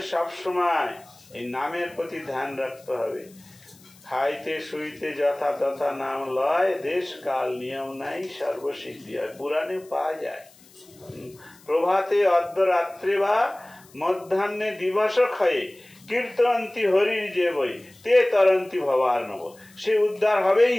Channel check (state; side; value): noise; left; hiss, 26 dB below the sound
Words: সব সময় এই নামের প্রতি ধ্যান রাখতে হবে। খাইতে শুইতে যথা তথা নাম লয়, দেশ কাল নিয়ম নাই, সর্বসিদ্ধি হয়। পুরাণে পাওয়া যায়, প্রভাতে অর্ধরাত্রে বা মধ্যাহ্নে দিবস ক্ষয়ে কীর্তন্তি হরির যে বই তে তরন্তি ভবার নব। সে উদ্ধার হবেই